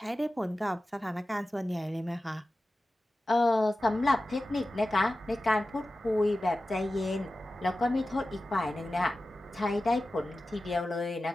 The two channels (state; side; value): normal; both; correlation 0.94